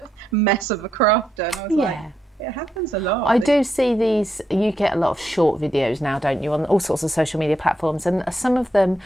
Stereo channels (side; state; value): both; normal; correlation 0.81